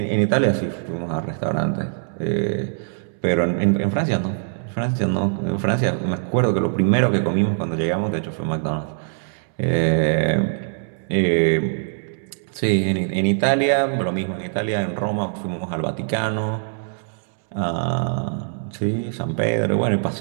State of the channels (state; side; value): silent; left; 64 dB below the other